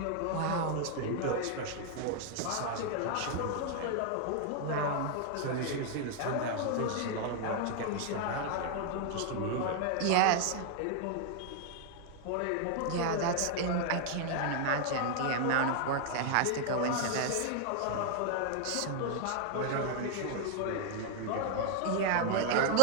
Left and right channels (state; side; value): different; both; correlation 0.00